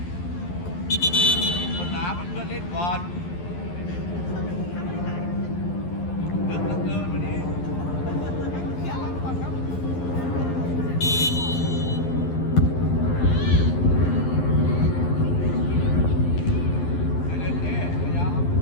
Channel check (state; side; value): late; right; 11 ms